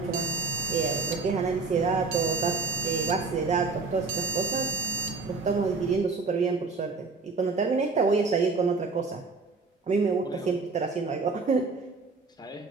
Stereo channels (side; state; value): left; quieter; 4.1 dB